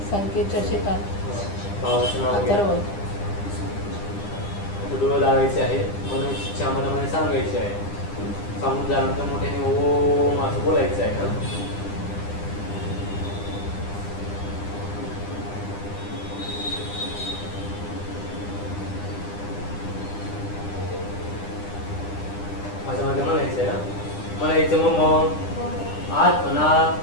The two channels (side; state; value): right; late; 9.9 ms